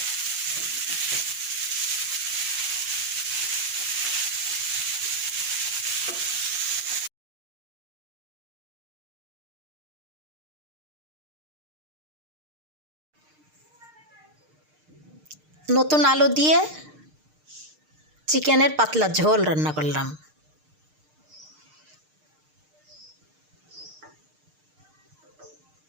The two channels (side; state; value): left; late; 6.6 ms